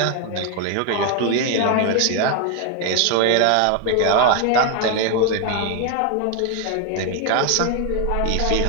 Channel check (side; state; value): both; different; correlation 0.01